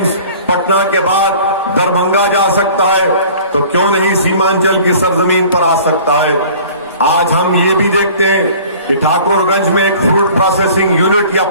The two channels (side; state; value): both; inverted; correlation -0.47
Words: پٹنہ کے بعد دربھنگہ جا سکتا ہے تو کیوں نہیں سیمانچل کی سرزمین پر آ سکتا ہے. آج ہم یہ بھی دیکھتے ہیں کہ ٹھاکر گنج میں ایک فروٹ پروسیسنگ یونٹ یا